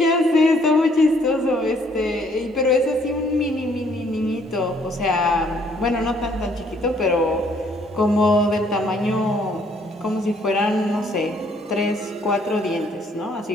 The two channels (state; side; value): normal; both; correlation 0.65